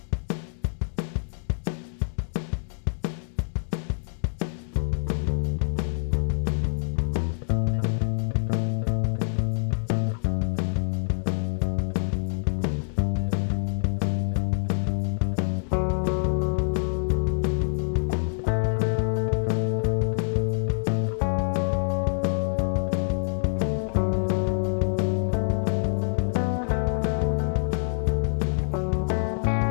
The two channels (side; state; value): right; silent; digital silence